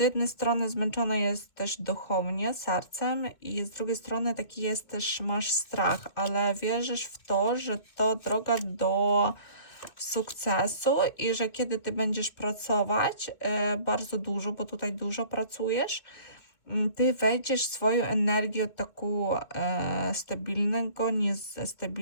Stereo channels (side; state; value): right; late; 2.5 ms